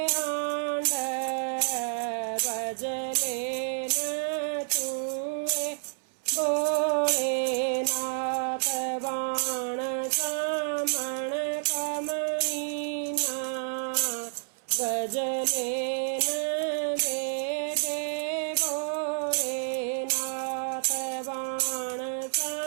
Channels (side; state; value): left; silent; 58 dB below the other